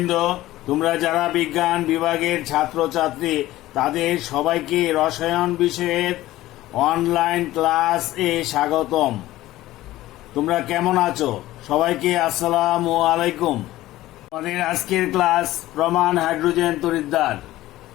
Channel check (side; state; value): right; quieter; 16.1 dB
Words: তোমরা যারা বিজ্ঞান বিভাগের ছাত্রছাত্রী তাদের সবাইকে রসায়ন বিষয়ের অনলাইন ক্লাস এ স্বাগতম। তোমরা কেমন আছো? সবাইকে আসসালামু আলাইকুম। তোমাদের আজকের ক্লাস প্রমাণ হাইড্রোজেন তড়িৎদ্বার।